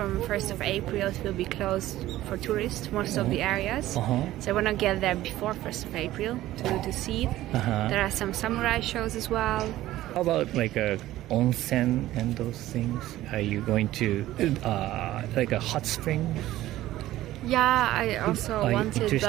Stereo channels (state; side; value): quieter; left; 15.1 dB